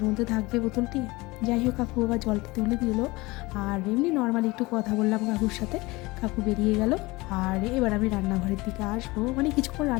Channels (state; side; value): quieter; right; 22.2 dB